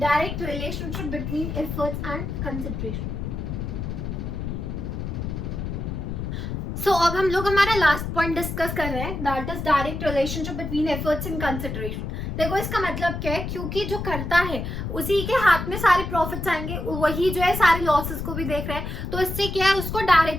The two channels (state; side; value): noise; left; rumble, 5 dB below the sound